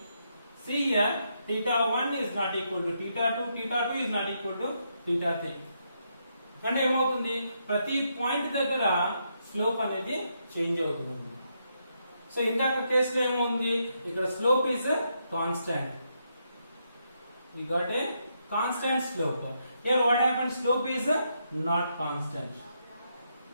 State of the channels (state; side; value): inverted; both; correlation -0.79